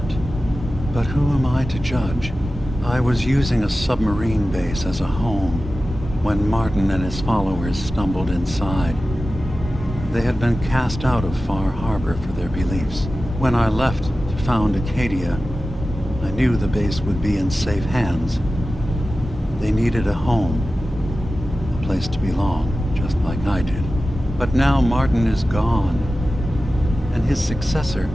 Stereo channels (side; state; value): both; normal; correlation 0.94